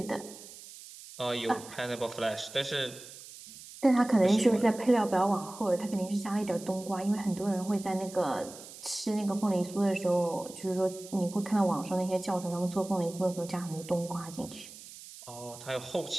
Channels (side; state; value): right; noise; hiss, 16 dB below the sound